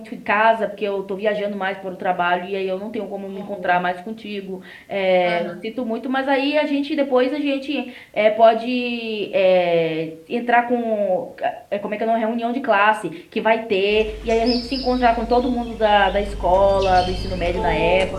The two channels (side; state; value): both; identical; correlation 1.00